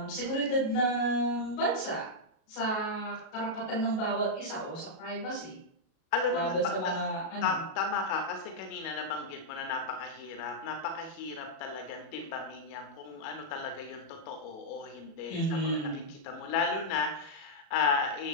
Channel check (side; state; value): right; late; 37 ms